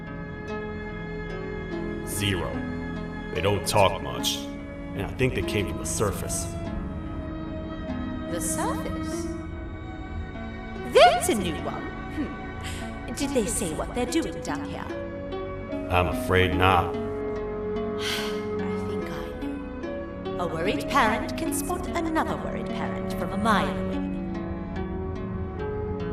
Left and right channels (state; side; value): identical; both; correlation 1.00